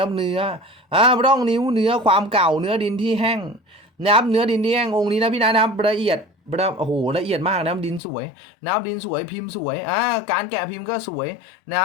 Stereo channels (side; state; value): right; drops out; at 8.0 s